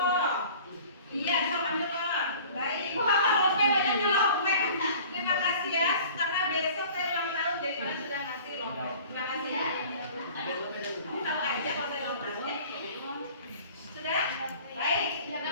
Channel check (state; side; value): inverted; both; correlation -0.46